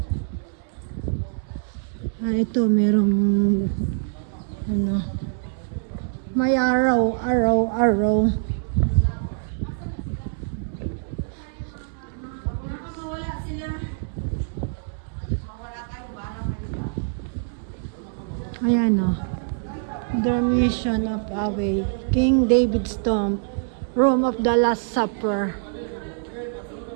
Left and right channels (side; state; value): left; silent; 62 dB below the other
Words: Ah, ito merong ano, may araw. Ayan o. Dormition of Abbey. King David's Tomb. Room of the Last Supper.